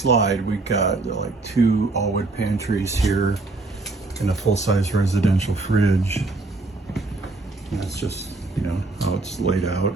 we've got like two all-wood pantries here and a full-size residential fridge. And that's just, how it's laid out.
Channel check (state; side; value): quieter; left; 3.3 dB